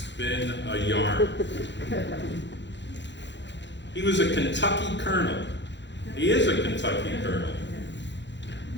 a yarn. He was a Kentucky colonel. He is a Kentucky colonel.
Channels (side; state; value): right; late; 0.52 ms